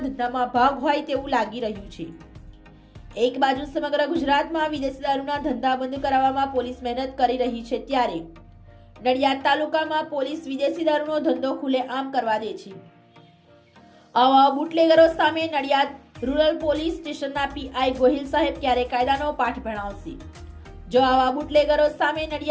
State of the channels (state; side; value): identical; both; correlation 1.00